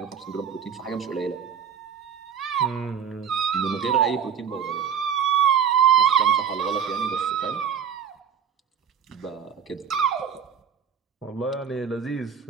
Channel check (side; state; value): left; quieter; 7.7 dB